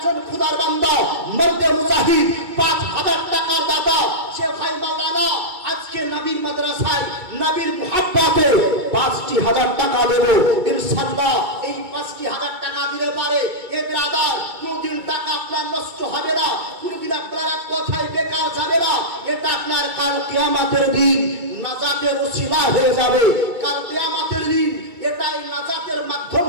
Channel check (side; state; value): left; late; 2.3 ms